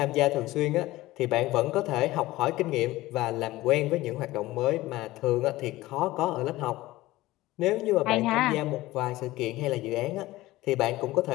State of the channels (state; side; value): quieter; right; 17.8 dB